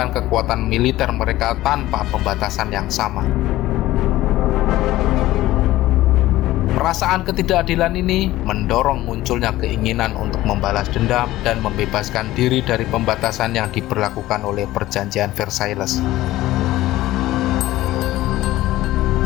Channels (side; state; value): right; quieter; 16.1 dB